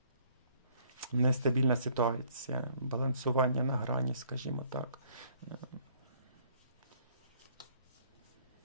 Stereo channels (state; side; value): inverted; both; correlation -0.61